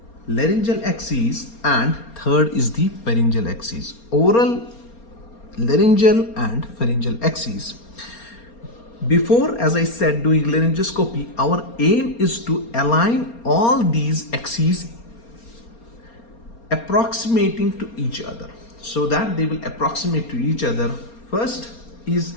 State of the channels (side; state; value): right; late; 4.3 ms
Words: laryngeal axis, and third is the pharyngeal axis. Oral, laryngeal, and pharyngeal axis. Before, as I said, doing laryngoscopy, our aim is to align all these axes approximating to each other so that they will approximate to each other. First is